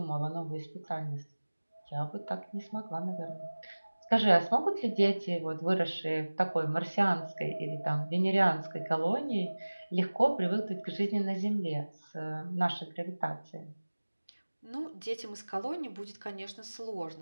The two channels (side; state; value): both; inverted; correlation -1.00